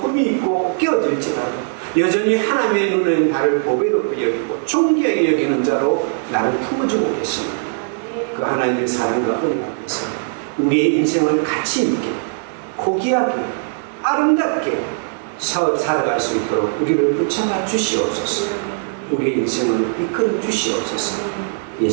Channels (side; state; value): left; silent; digital silence